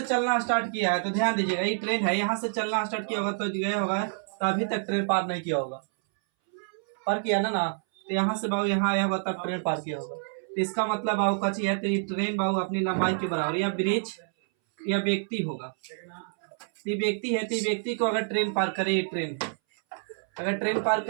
चलना स्टार्ट किया है, तो ध्यान दीजिएगा ये ट्रेन है, यहाँ से चलना स्टार्ट किया होगा तो गया होगा, तो अभी तक ट्रेन पार नहीं किया होगा, पार किया ना तो यहाँ से बाबू यहाँ आया होगा तब ट्रेन पार किया होगा। तो इसका मतलब बाबू कच्ची है, तो ये ट्रेन बाबू अपनी लंबाई के बराबर या ब्रिज या व्यक्ति होगा। ये व्यक्ति है, तो ये व्यक्ति को अगर ट्रेन पार करे, ये ट्रेन अगर ट्रेन पार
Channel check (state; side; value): silent; left; 59 dB below the other